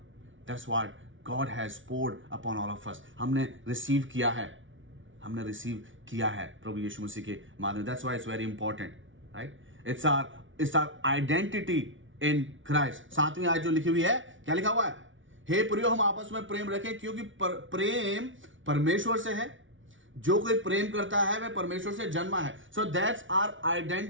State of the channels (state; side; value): late; left; 0.56 ms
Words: That's what God has poured upon all of us. हमने रिसीव किया है प्रभु यीशु मसीह के माध्यम। That's why it's very important, right? It's our identity in Christ. 7वीं आयत जो लिखी हुई है, क्या लिखा हुआ है, हे प्रियो हम आपस में प्रेम रखें क्योंकि प्रेम परमेश्वर से है, जो कोई प्रेम करता है वह परमेश्वर से जन्मा है। So that's our